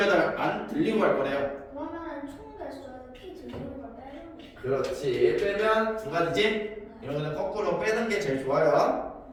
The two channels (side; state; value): both; identical; correlation 1.00